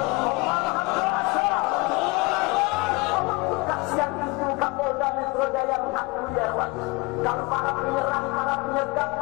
Allah maha kuasa. Allah buka siang itu Kapolda Metro Jaya mengakui ya kawan, kalau para penyerang, para penyergap,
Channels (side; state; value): right; quieter; 25.1 dB